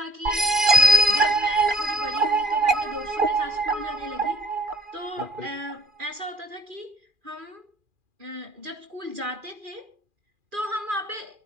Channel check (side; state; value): left; late; 2.4 ms